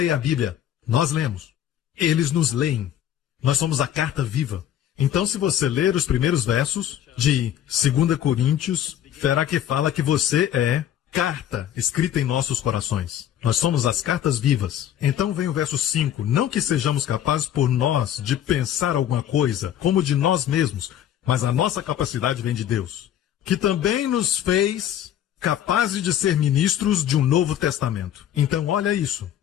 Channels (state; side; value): quieter; right; 10.7 dB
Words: a Bíblia, nós lemos. Eles nos leem. Nós somos a carta viva. Então, se você ler os primeiros versos de 2 Coríntios, verá que fala que você é carta escrita em nossos corações. Nós somos as cartas vivas. Então vem o verso 5. Não que sejamos capazes por nós de pensar alguma coisa, como de nós mesmos, mas a nossa capacidade vem de Deus, que também nos fez capazes de ser ministros de um novo testamento. Então, olha isso.